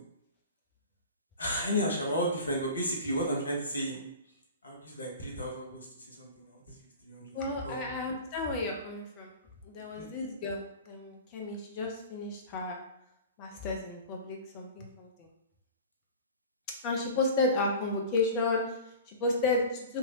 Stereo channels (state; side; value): inverted; both; correlation -0.36